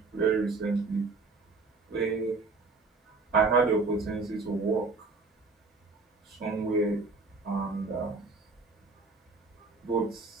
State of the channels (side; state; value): left; quieter; 3.9 dB